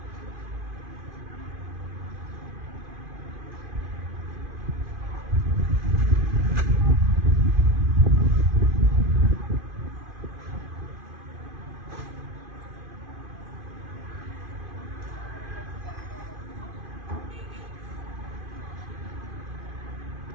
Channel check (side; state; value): left; late; 2.5 ms